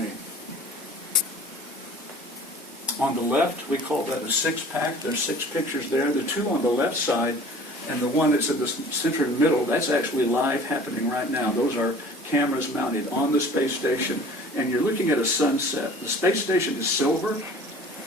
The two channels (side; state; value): both; normal; correlation 0.46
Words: On the left, we call that a six-pack. There's 6 pictures there. The 2 on the left side and the one that's in the center middle, that's actually live happening right now. Those are cameras mounted on the space station, and you're looking at a sunset. The space station is silver,